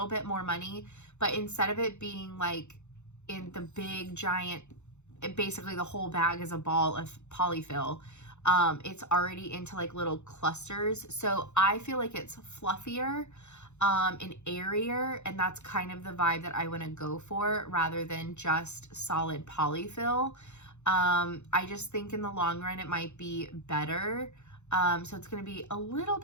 bit more money, but instead of it being like in the big giant, basically the whole bag is a ball of polyfill, it's already into like little clusters. So I feel like it's fluffier and airier, and that's kind of the vibe that I want to go for rather than just solid polyfill. I just think in the long run it might be better. So it's going to be a little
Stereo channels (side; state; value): right; late; 0.83 ms